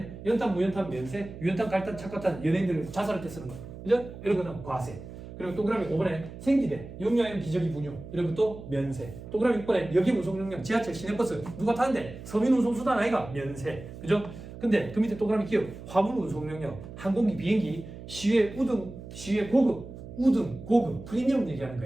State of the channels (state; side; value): noise; right; hum, 13 dB below the sound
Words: 연탄, 무연탄, 면세, 유연탄, 갈탄, 착화탄, 연예인들 자살할 때 쓰는 거. 그죠? 이런 거는 과세. 그리고 동그라미 5번에 생기대, 용량형 기저귀 분유 이런 것도 면세. 동그라미 6번에 여기 운송용량, 지하철, 시내버스 누가 타는데? 서민운송수단 아이가? 면세. 그죠? 근데 그 밑에 동그라미 기억, 화물 운송용량, 항공기, 비행기, 시외 우등, 시외 고급, 우등, 고급, 프리미엄 얘기하는